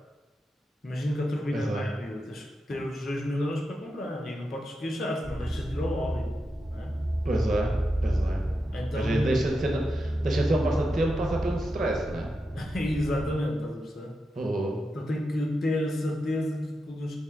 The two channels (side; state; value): both; normal; correlation 0.88